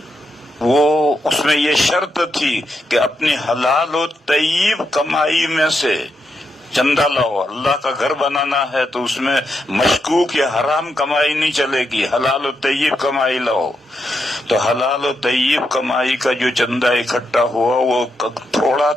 وہ اس میں یہ شرط تھی کہ اپنی حلال و طیب کمائی میں سے چندہ لاؤ۔ اللہ کا گھر بنانا ہے تو اس میں مشکوک یا حرام کمائی نہیں چلے گی، حلال و طیب کمائی لاؤ۔ تو حلال و طیب کمائی کا جو چندہ اکٹھا ہوا وہ تھوڑا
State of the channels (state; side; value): normal; both; correlation 0.83